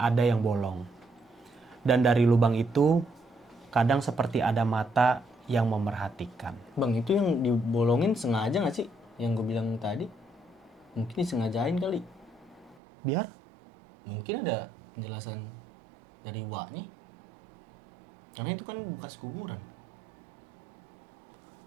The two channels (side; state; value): left; drops out; at 12.8 s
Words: yang bolong. Dan dari lubang itu, kadang seperti ada mata yang memerhatikan. Bang, itu yang dibolongin sengaja nggak sih? Yang gue bilang tadi. Mungkin disengajain kali. Biar? Mungkin ada penjelasan dari Waknya. Karena itu kan bekas kuburan.